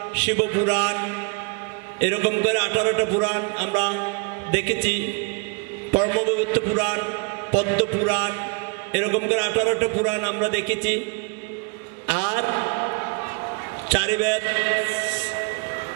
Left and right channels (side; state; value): left; quieter; 34.6 dB